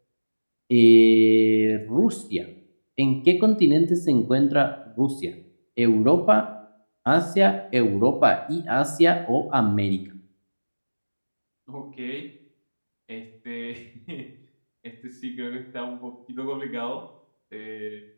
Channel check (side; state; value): both; inverted; correlation -1.00